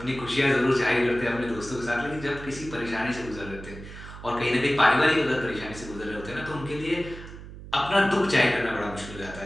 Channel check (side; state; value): right; noise; hum, 14 dB below the sound